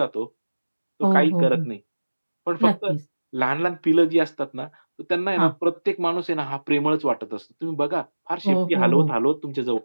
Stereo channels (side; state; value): both; inverted; correlation -1.00